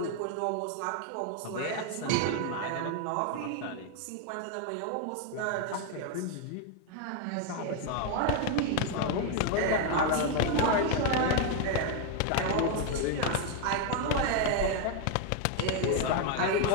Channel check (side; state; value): both; different; correlation 0.01